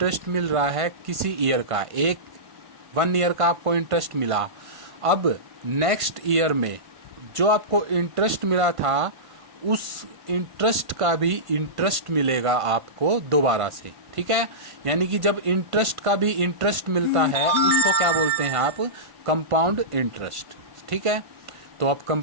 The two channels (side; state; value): left; late; 1.5 ms